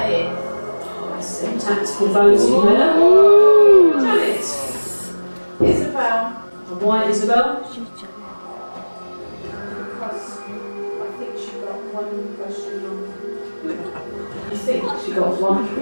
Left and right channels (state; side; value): inverted; both; correlation -1.00